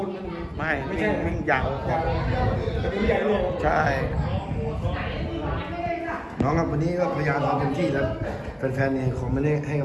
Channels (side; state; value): both; identical; correlation 1.00